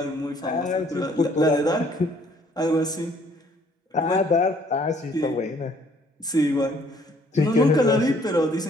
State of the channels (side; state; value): both; normal; correlation 0.62